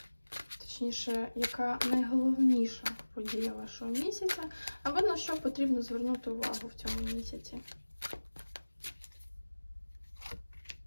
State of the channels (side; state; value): both; inverted; correlation -1.00